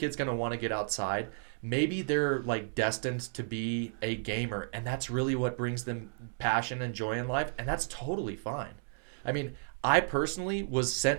going to want to get outside. Maybe they're like destined to be a gamer, and that's really what brings them passion and joy in life, and that's totally fine. I mean, I personally was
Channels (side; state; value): left; silent; digital silence